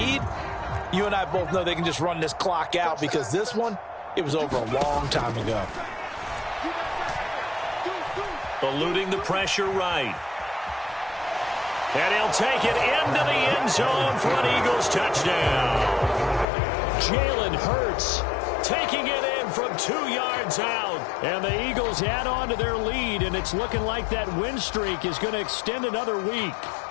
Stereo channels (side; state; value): right; drops out; at 16.4 s